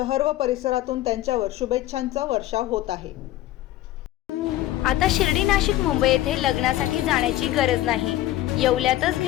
व परिसरातून त्यांच्यावर शुभेच्छांचा वर्षाव होत आहे. आता शिर्डी, नाशिक, मुंबई येथे लग्नासाठी जाण्याची गरज नाही. येवल्यातच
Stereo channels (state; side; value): quieter; right; 14.9 dB